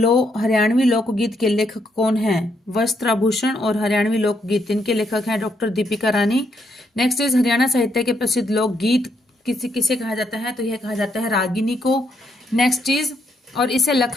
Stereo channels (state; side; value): normal; both; correlation 0.76